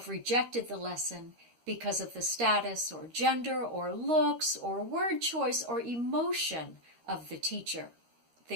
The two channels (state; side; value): late; left; 13 ms